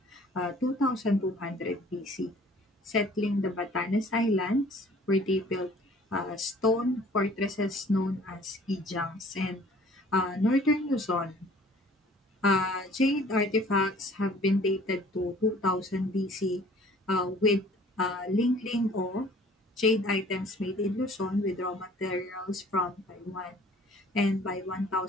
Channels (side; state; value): both; normal; correlation 0.52